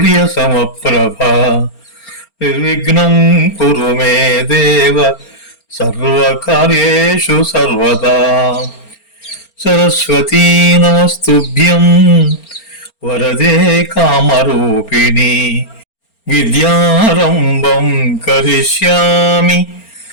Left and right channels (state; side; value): late; right; 4.3 ms